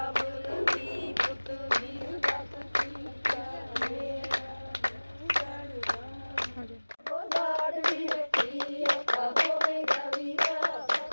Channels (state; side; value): inverted; both; correlation -1.00